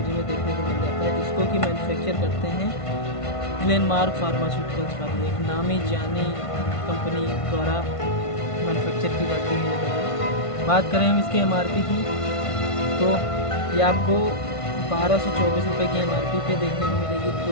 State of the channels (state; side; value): late; right; 1.5 ms